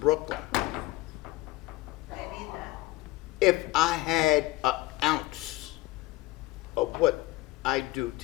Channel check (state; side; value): quieter; right; 18.0 dB